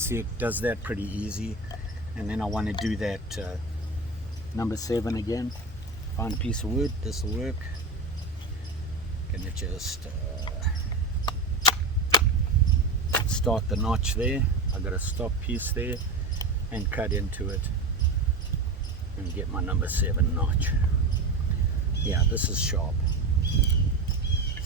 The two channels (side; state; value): left; quieter; 3.1 dB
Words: it does that pretty easy. And then I want to do that number 7 again. Find a piece of wood, this will work. Gonna just start the notch there. I got a stop piece there and cut into it and get my number 7 notch. Yeah, this is sharp.